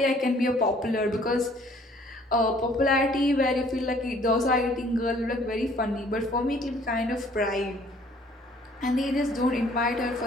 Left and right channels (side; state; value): both; normal; correlation 0.58